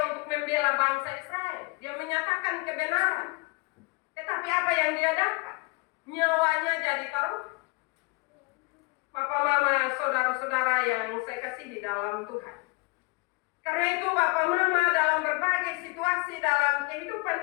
untuk membela bangsa Israel. Dia menyatakan kebenaran. Tetapi apa yang dia dapat? Nyawanya jadi taruhan. Bapak Mama, saudara-saudara yang saya kasihi dalam Tuhan. Karena itu Bapak Mama, dalam berbagai situasi dalam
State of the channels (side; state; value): right; quieter; 26.4 dB